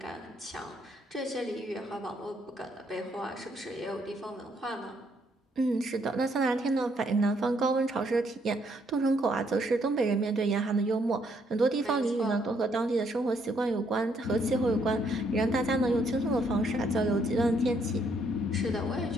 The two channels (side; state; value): both; normal; correlation 0.71